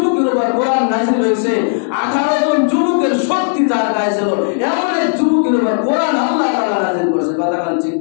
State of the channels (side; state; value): right; silent; digital silence